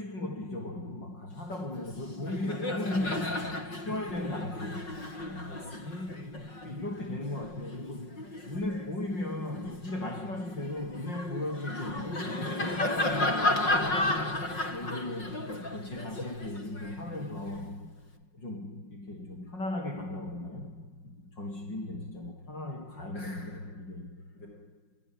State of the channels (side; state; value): right; late; 5.5 ms